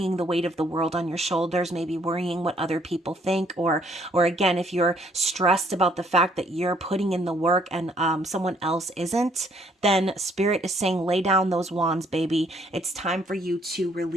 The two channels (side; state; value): both; normal; correlation 0.65